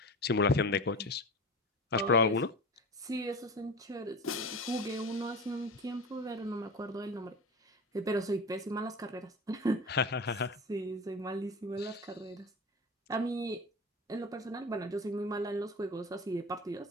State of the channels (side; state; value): both; normal; correlation 0.31